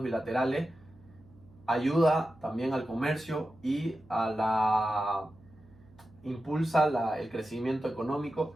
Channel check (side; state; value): right; noise; hum, 26 dB below the sound